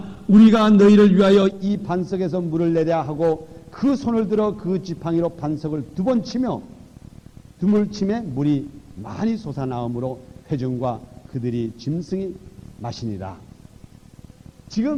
우리가 너희를 위하여 이 반석에서 물을 내랴 하고 그 손을 들어 그 지팡이로 반석을 2번 치며 두물 침에 물이 많이 솟아나오므로 회중과 그들이 짐승이 마시니라.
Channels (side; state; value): both; identical; correlation 1.00